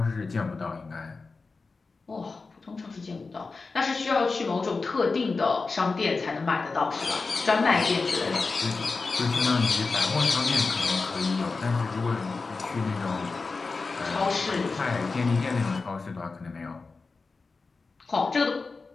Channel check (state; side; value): quieter; right; 4.1 dB